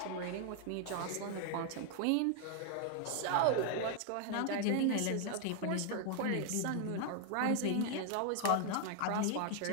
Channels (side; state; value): both; different; correlation 0.00